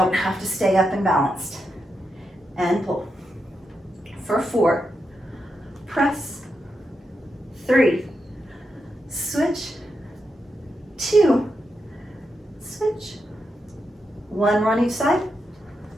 have to stay up and balanced. And pull. For 4, press, 3, switch, 2, switch. 1 more on each side.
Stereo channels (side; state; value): both; normal; correlation 0.85